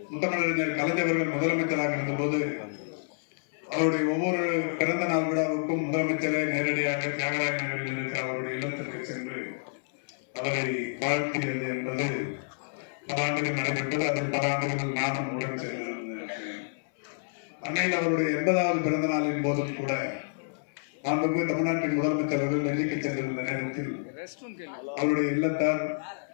முத்தமிழறிஞர் கலைஞர்கள் முதலமைச்சராக இருந்தபோது அவருடைய ஒவ்வொரு பிறந்த நாள் விழாவுக்கும் முதலமைச்சரை நேரடியாக தியாகராய நகரில் இருக்கிற அவருடைய இல்லத்திற்கு சென்று அவரை வாழ்த்தியது என்பது பல ஆண்டுகள் நடைபெற்றது. அதில் பல ஆண்டுகள் நானும் உடன் சென்றிருந்தேன். அன்னையில் அவருடைய 80வது பிறந்த நாளின் போதும் கூட மாண்புமிகு தமிழ்நாட்டின் முதலமைச்சர் அவர்கள் டெல்லிக்கு சென்றிருந்த நேரத்தில் அவருடைய இல்லத்தார்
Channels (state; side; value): silent; right; 59 dB below the other